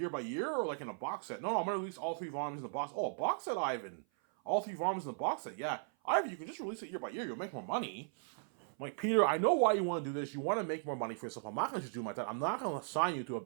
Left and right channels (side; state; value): left; silent; 53 dB below the other